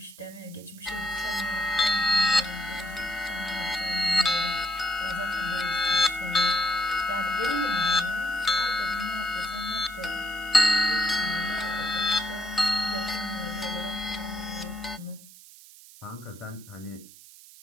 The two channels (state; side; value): noise; right; hiss, 20 dB below the sound